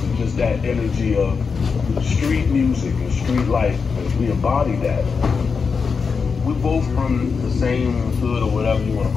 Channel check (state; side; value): quieter; right; 5.4 dB